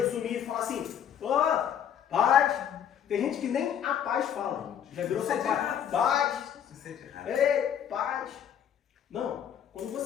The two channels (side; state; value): right; quieter; 9.1 dB